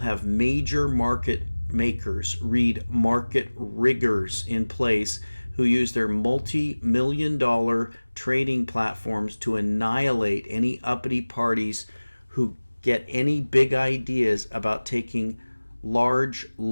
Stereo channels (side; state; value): both; inverted; correlation -1.00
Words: major market makers, read market riggers, in place who use their multi-million-dollar trading platforms to annihilate any uppity parties who get any big ideas about taking large